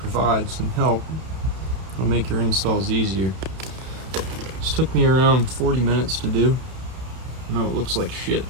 some help. It'll make your installs easier. This took me around 40 minutes to do. I know it looks like shit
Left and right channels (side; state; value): left; late; 31 ms